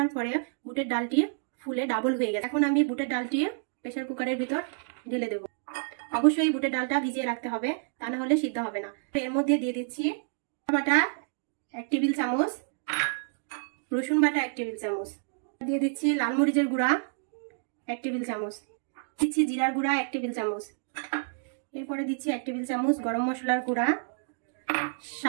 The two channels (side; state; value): left; silent; digital silence